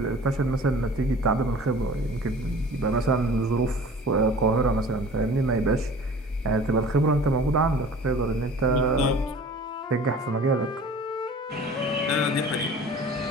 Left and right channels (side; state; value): both; normal; correlation 0.44